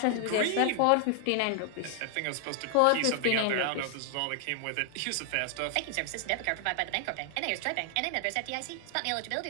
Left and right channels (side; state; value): both; different; correlation 0.00